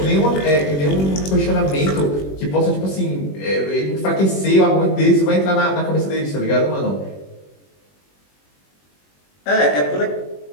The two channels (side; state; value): right; late; 21 ms